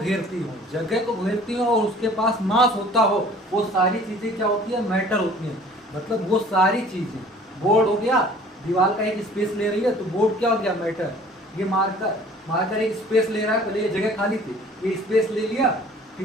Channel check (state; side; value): normal; both; correlation 0.50